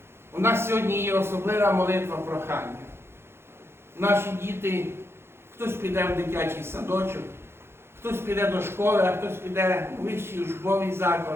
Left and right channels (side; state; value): left; late; 0.12 ms